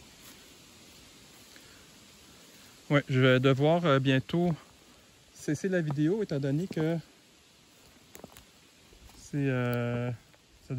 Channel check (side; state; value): both; identical; correlation 1.00